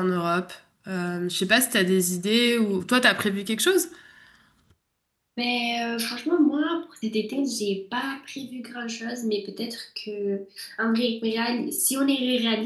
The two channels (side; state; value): both; identical; correlation 1.00